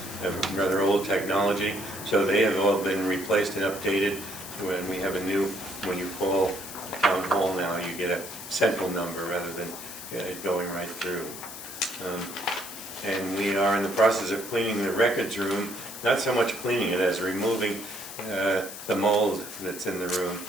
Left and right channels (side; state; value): left; noise; hiss, 11 dB below the sound